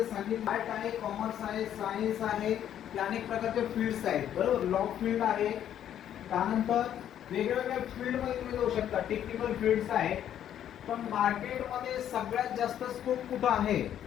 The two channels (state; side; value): quieter; right; 10.4 dB